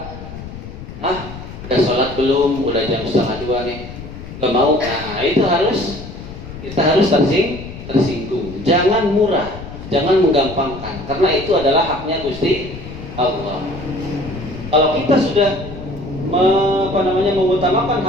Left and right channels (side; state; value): left; noise; rumble, 12 dB below the sound